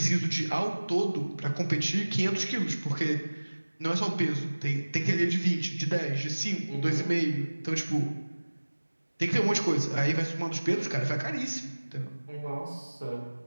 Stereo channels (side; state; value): both; inverted; correlation -1.00